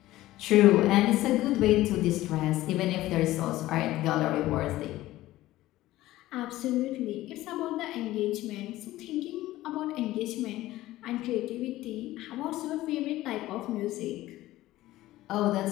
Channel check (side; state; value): right; quieter; 16.2 dB